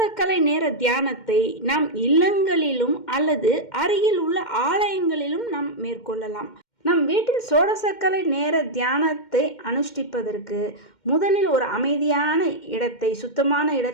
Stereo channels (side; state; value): right; late; 2.1 ms